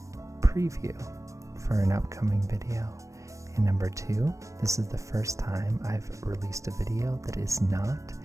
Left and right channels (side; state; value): left; late; 0.15 ms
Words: preview for an upcoming video. And number two, this is the first time I've released a video that is not